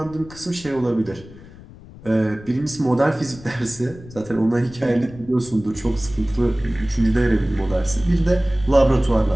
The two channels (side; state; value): left; noise; rumble, 19 dB below the sound